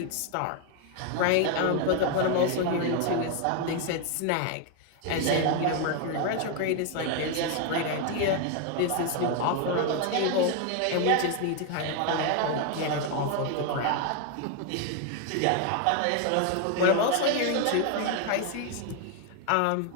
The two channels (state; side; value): different; both; correlation 0.01